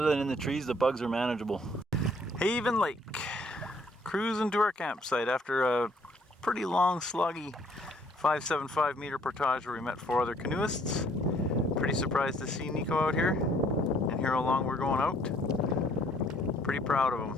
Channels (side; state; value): both; normal; correlation 0.63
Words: than in the trees, the bugs are manageable. Haven Lake. Cruising to our campsite after a pretty long, sluggy 575 meter portage where we met 4 other canoeists. Pretty surprised to see Nico out here and hear how long we're going out. Pretty proud of